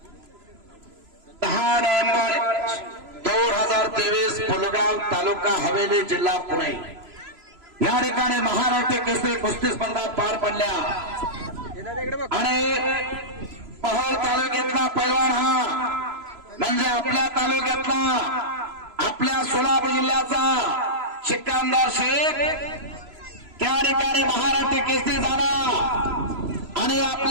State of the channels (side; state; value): left; late; 3.0 ms